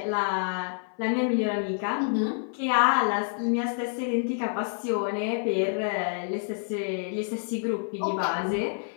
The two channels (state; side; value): silent; right; 57 dB below the other